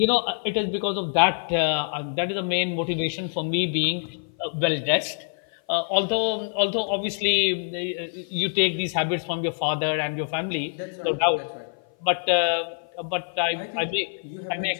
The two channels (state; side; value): silent; right; 56 dB below the other